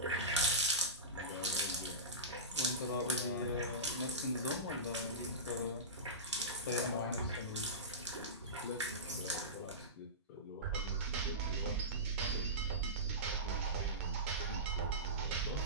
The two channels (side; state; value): both; normal; correlation -0.19